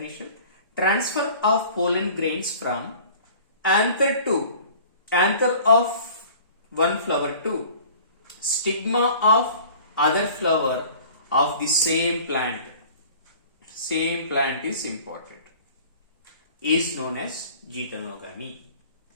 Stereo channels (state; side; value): inverted; both; correlation -0.47